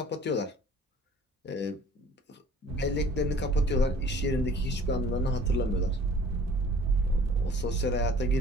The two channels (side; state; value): both; normal; correlation 0.51